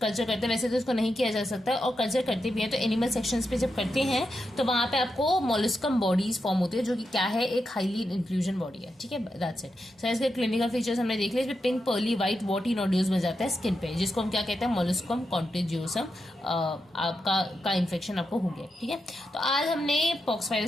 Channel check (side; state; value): both; normal; correlation 0.87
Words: करते हैं, वैसे तो इसको नहीं किया जा सकता, और कल्चर करते भी हैं तो एनिमल सेक्शंस पे जब करते हैं तो वहां पे आपको मोलस्कम बॉडीज फॉर्म होती है, जो कि क्या है, एक हाईली इंक्लूजन बॉडी है। ठीक है, दैट्स इट। सो इसके क्लिनिकल फीचर्स हमने देख लिया। इसमें pink pearly white worthy nodules बन जाता है स्किन पे, जिसको हम क्या कहते हैं, मोलस्कम कॉन्टेजियोसम आपका इन्फेक्शन आपको हो गया। ठीक है, तो आज हमने पॉक्स